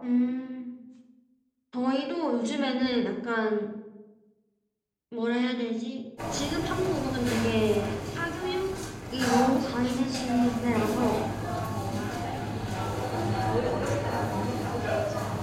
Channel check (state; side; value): identical; both; correlation 1.00